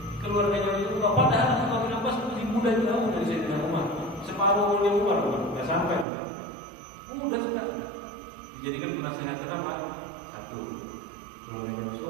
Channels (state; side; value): drops out; left; at 6.1 s